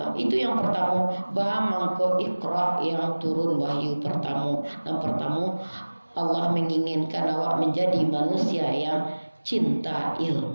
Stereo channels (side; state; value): both; inverted; correlation -1.00